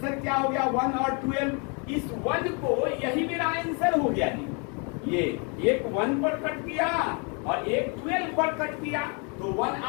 क्या हो गया, 1 और 12। इस 1 को, यही मेरा आंसर हो गया जी। ये एक 1 पर कट किया और एक 12 पर कट किया, तो 1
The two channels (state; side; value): quieter; right; 35.1 dB